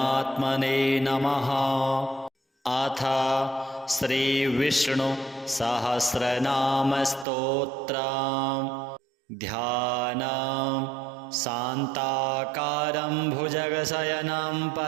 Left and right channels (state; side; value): drops out; left; at 7.2 s